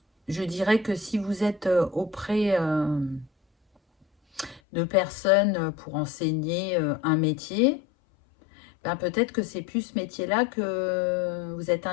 Je dirais que si vous êtes auprès de personnes pour enseigner un métier, ben peut-être que c'est plus ce métier-là que vous êtes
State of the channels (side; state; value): right; drops out; at 4.6 s